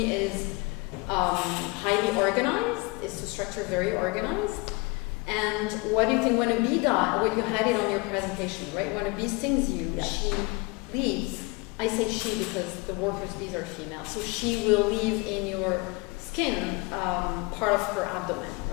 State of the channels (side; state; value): right; quieter; 26.5 dB